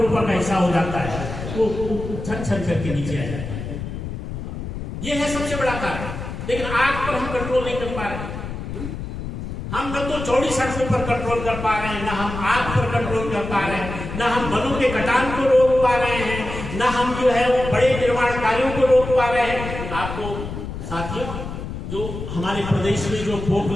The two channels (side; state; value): left; noise; rumble, 7 dB below the sound